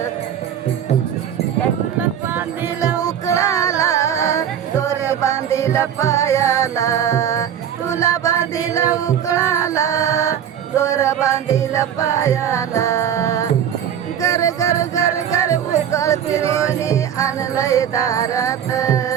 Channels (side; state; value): left; quieter; 9.3 dB